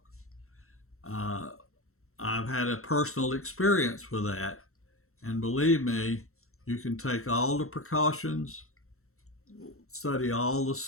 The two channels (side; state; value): right; late; 0.63 ms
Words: I've had a personal experience with that, and believe me, you can take all the precautions, study all the